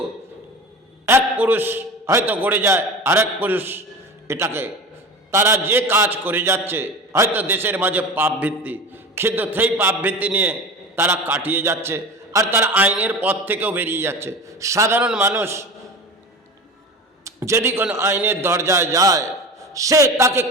এক পুরুষ হয়তো গড়ে যায়, আরেক পুরুষ এটাকে, তারা যে কাজ করে যাচ্ছে হয়তো দেশের মাঝে পাপ ভিত্তি, কিন্তু সেই পাপ ভিত্তি নিয়ে তারা কাটিয়ে যাচ্ছে, আর তারা আইনের পথ থেকেও বেরিয়ে যাচ্ছে। সাধারণ মানুষ যদি কোনো আইনের দরজায় যায়, সে তাকে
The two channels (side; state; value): both; normal; correlation 0.31